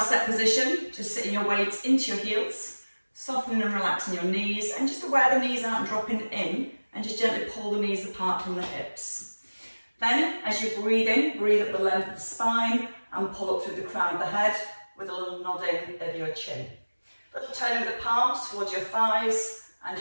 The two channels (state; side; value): inverted; both; correlation -1.00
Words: set position. Just sitting your weights into your heels, softening and relaxing your knees, and just aware the knees aren't dropping in, and just gently pull the knees apart from the hips. Then, as you breathe in, breathe up the length of the spine and pull up through the crown of the head with a little nodding of your chin. Little turn of the palms towards your thighs and